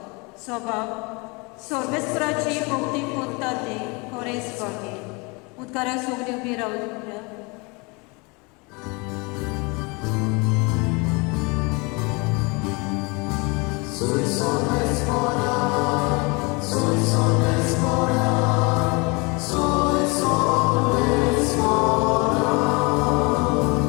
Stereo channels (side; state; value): right; quieter; 28.7 dB